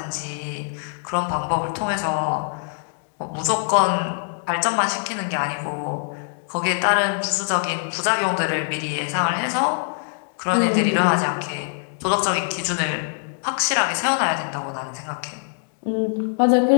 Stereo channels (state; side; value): silent; right; digital silence